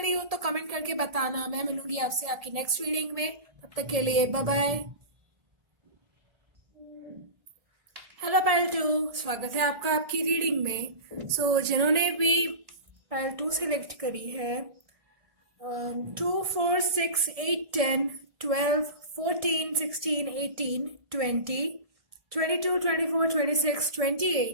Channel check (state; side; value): late; left; 1.7 ms